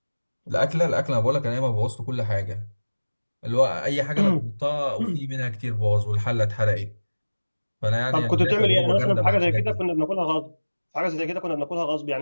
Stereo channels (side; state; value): both; inverted; correlation -1.00